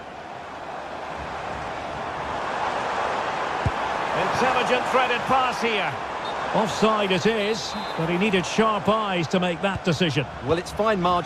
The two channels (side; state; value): both; identical; correlation 1.00